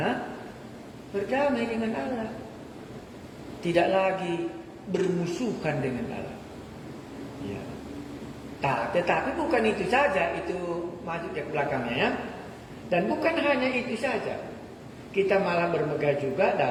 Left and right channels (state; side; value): identical; both; correlation 1.00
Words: berdamai dengan Allah. Tidak lagi bermusuhan dengan Allah. Ya. Tetapi bukan itu saja, itu masuk ke belakangnya ya. Dan bukan hanya itu saja. Kita malah bermegah juga